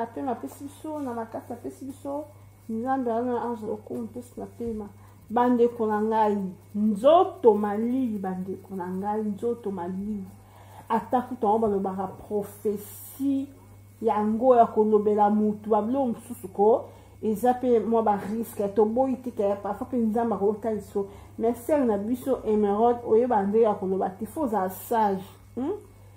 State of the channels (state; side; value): identical; both; correlation 1.00